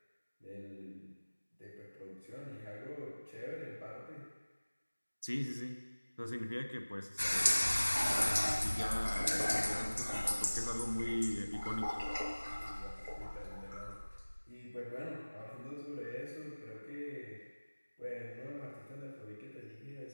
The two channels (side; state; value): both; inverted; correlation -1.00